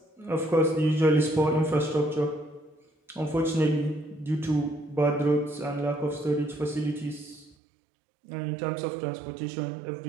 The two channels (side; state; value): left; drops out; at 7.6 s